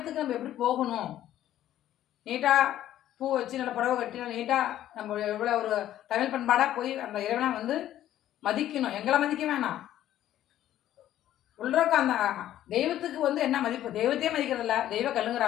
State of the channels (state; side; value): quieter; right; 12.5 dB